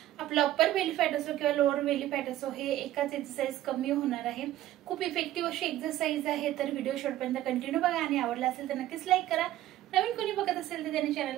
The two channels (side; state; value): left; quieter; 14.0 dB